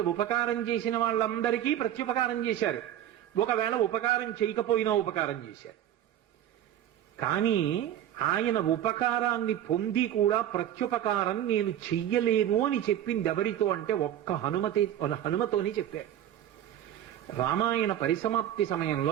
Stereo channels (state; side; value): quieter; left; 11.4 dB